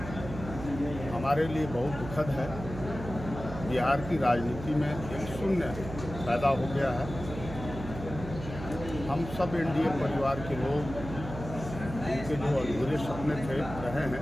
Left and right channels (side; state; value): right; noise; hum, 10 dB below the sound